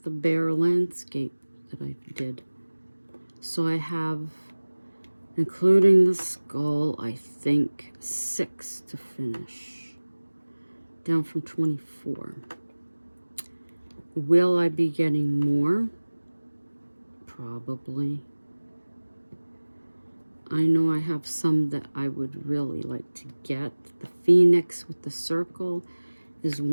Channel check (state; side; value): inverted; both; correlation -1.00